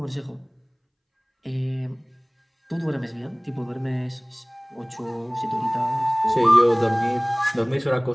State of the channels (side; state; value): both; identical; correlation 1.00